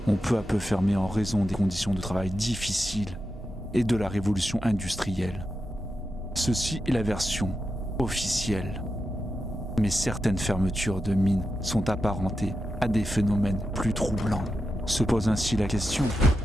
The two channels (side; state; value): both; normal; correlation 0.88